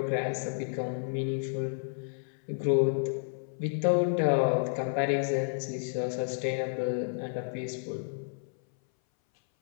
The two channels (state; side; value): silent; right; 57 dB below the other